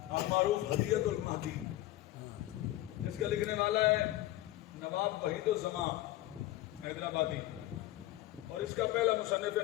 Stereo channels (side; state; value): right; quieter; 15.6 dB